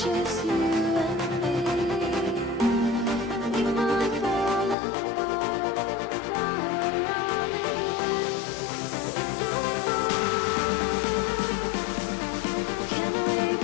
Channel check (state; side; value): drops out; right; at 4.8 s